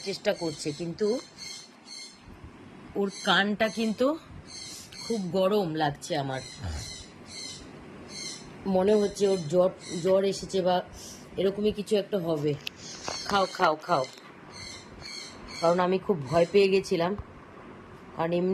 চেষ্টা করছে। কিন্তু ওর কানটা কিন্তু খুব গরম লাগছে আমার। মনে হচ্ছে ওর জ্বর জ্বর এসেছে বা এরকমই কিছু একটা হবে। খাও খাও খাও, কারণ আমি খুব ভয় পেয়ে গেছিলাম। কারণ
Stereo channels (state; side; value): identical; both; correlation 1.00